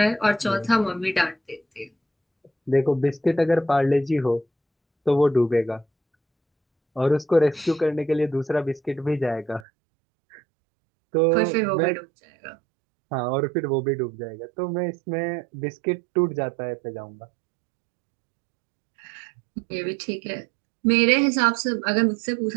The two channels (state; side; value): drops out; left; at 9.7 s